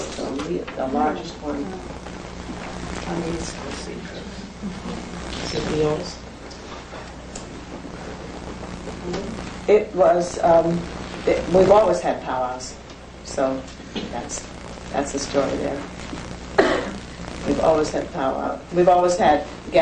the largest one. On the East Coast. Is it yours? It was, we've always had powwows, so that's the story there. We've always had powwow. We've always had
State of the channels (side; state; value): both; identical; correlation 1.00